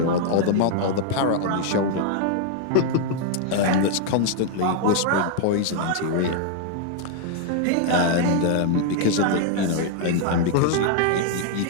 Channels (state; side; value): different; both; correlation 0.00